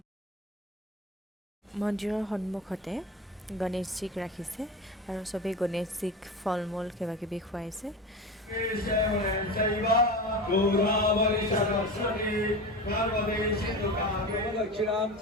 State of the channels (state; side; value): normal; both; correlation 0.28